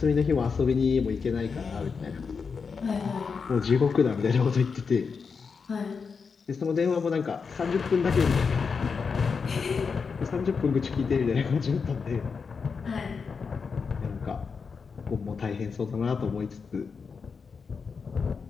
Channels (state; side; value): quieter; right; 5.4 dB